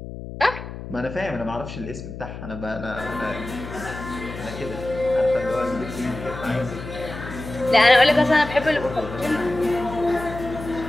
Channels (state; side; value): noise; left; hum, 10 dB below the sound